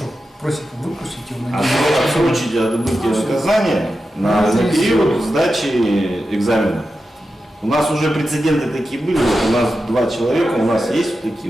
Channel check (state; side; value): normal; both; correlation 0.91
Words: просит выпустить его на Отсрочить отбытие наказания на период сдачи экзамена. У нас уже прецеденты такие были. Вот у нас 2 человека, у нас есть